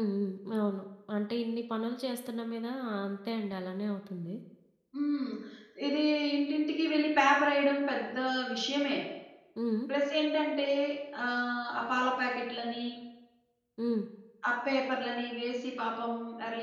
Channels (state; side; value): identical; both; correlation 1.00